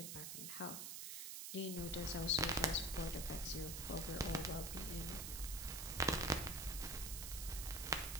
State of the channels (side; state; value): right; noise; hiss, 5 dB below the sound